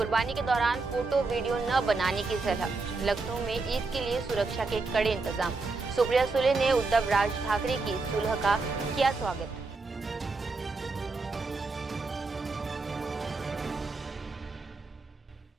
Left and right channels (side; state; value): left; quieter; 3.8 dB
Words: के दौरान फोटो वीडियो न बनाने की सलाह। लखनऊ में ईद के लिए सुरक्षा के कड़े इंतजाम। सुप्रिया सुले ने उद्धव राज ठाकरे की सुलह का किया स्वागत।